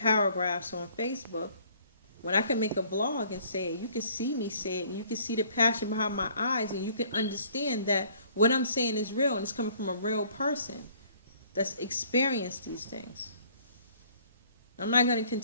on Facebook when I can make a vlog and say it? You can see me say it, and you can see the passion behind my eyes, and you can understand that what I'm saying is real, and it's coming from a real person that's experienced these things. I'm not going to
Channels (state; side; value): inverted; both; correlation -0.58